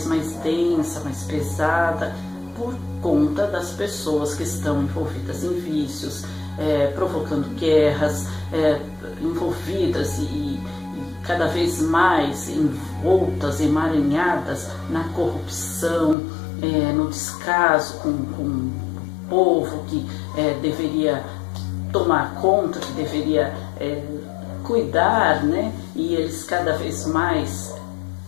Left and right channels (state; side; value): drops out; right; at 16.2 s